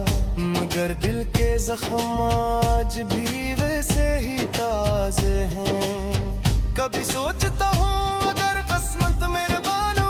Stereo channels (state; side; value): identical; both; correlation 1.00